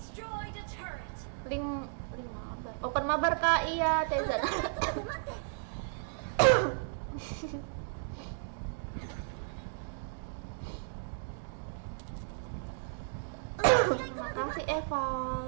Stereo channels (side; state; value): left; silent; digital silence